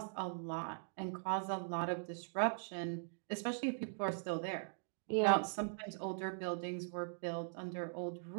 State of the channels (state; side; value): silent; left; digital silence